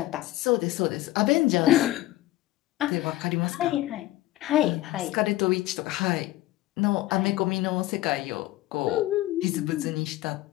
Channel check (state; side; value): quieter; right; 16.8 dB